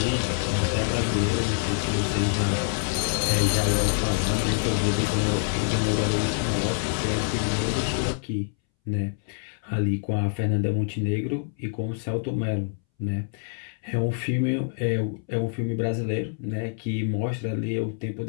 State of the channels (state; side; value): silent; right; 61 dB below the other